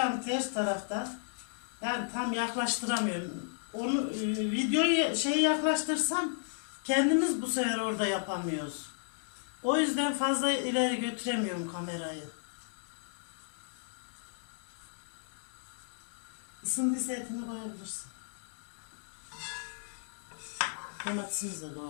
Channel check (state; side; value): silent; right; 55 dB below the other